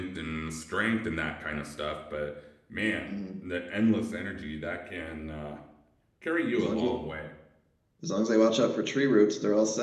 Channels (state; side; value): identical; both; correlation 1.00